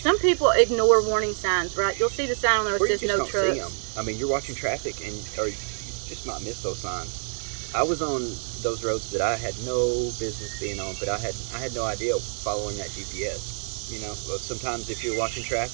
people ignore warning signs, right? You'll see the sign on there that says no trucks. I mean, you're watching traffic, or you just might miss those signs. I was on those roads that I had no business being on, but I had no idea following that GPS. You know, sometimes if you're watching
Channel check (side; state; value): left; silent; 59 dB below the other